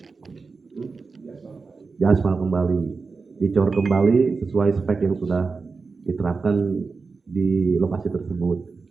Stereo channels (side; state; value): left; quieter; 4.5 dB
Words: Diaspal kembali, dicor kembali sesuai spek yang sudah diterapkan di lokasi tersebut.